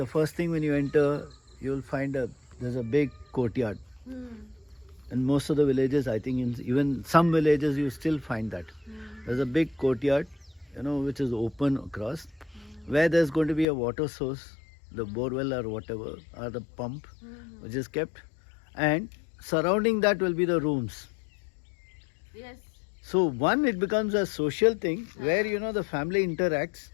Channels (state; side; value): drops out; right; at 13.7 s